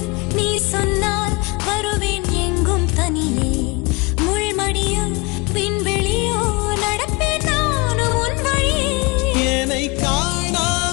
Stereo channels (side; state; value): right; quieter; 27.0 dB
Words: நீ சொன்னால் வருவேன் எங்கும் தனியே, முள்மடியும் விண்வெளியோ நடப்பேன் நானும் உன் வழியே. என்னை